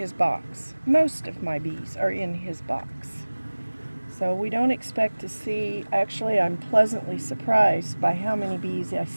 box. Most of my bees are in his box. So we don't expect to see, actually I'm pleasantly surprised by how many bees I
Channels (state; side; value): inverted; both; correlation -1.00